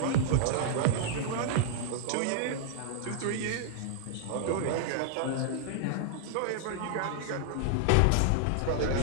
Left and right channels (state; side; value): different; both; correlation 0.00